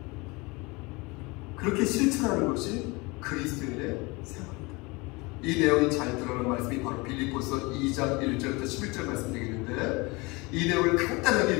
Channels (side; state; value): right; quieter; 25.6 dB